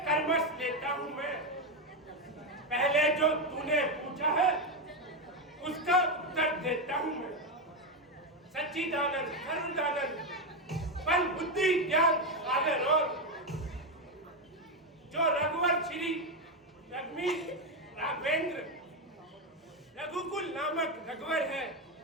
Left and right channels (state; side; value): normal; both; correlation 0.09